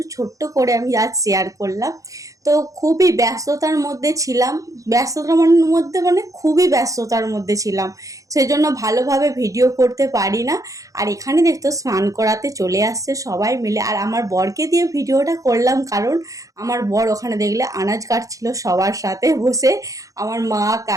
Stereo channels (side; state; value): left; late; 0.16 ms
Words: ছোট্ট করে আমি আজ শেয়ার করলাম। তো খুবই ব্যস্ততার মধ্যে ছিলাম, খুবই ব্যস্ততার মধ্যে ছিলাম, সেই জন্য ভালোভাবে ভিডিও করতে পারি না। আর এখানে দেখতো স্নান করাতে চলে আসছে সবাই মিলে, আর আমার বরকে দিয়ে ভিডিওটা করলাম কারণ আমার বর ওখানে দেখলে আনাজ কাটছিল সবার সাথে বসে। আমার মা,